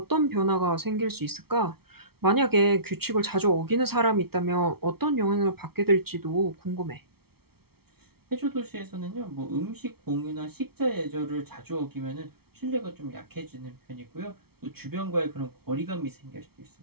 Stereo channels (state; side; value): late; left; 0.95 ms